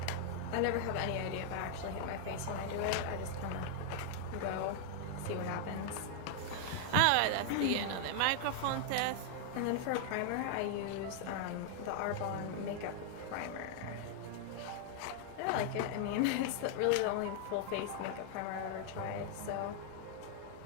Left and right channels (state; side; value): different; both; correlation 0.00